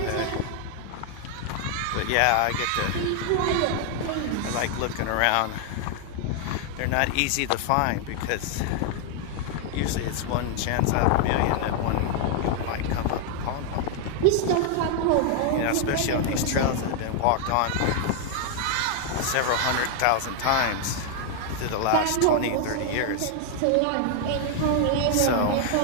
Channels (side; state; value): both; different; correlation 0.00